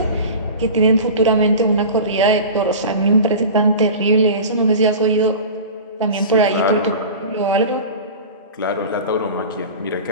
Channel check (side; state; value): both; inverted; correlation -0.33